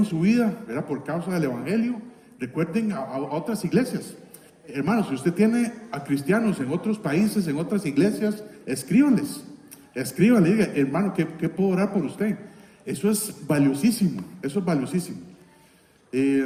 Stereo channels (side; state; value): both; identical; correlation 1.00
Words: su vida, ¿verdad? Por causa del evangelio. Recuerden a otras iglesias. Hermanos, si usted tiene a cristianos en otros países, en otras iglesias, escríbanle, diga, hermano, ¿qué puedo orar por usted? Eso es valiosísimo,